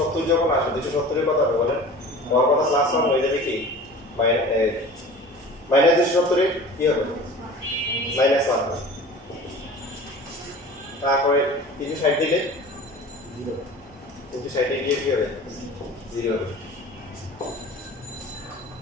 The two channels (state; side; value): normal; both; correlation 0.40